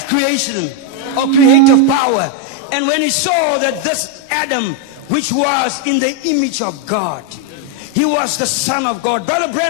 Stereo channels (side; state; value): both; different; correlation 0.01